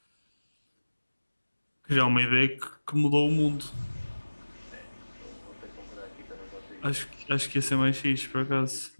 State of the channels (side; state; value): both; inverted; correlation -1.00